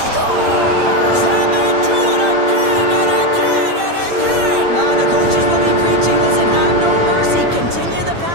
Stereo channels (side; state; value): left; late; 8.8 ms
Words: And they do it again and again and again! The coaches will be preaching. Listen, have no mercy. Continue the